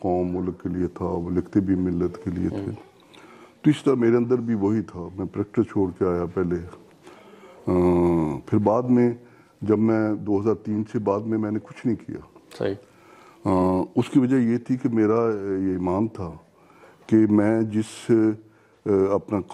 قوم ملک کے لیے تھا. وہ لکھتے بھی ملت کے لیے تھے. تو اس طرح میرے اندر بھی وہی تھا. میں پریکٹس چھوڑ کے آیا پہلے. پھر بعد میں جب میں 2003 سے بعد میں نے کچھ نہیں کیا. اس کی وجہ یہ تھی کہ میرا یہ ایمان تھا کہ میں جس اپنا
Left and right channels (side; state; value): both; identical; correlation 1.00